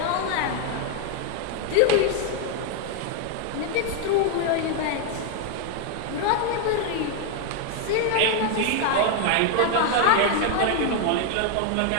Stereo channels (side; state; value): both; different; correlation 0.01